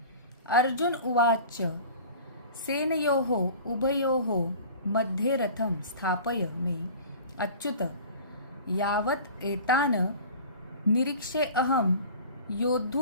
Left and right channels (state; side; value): inverted; both; correlation -0.41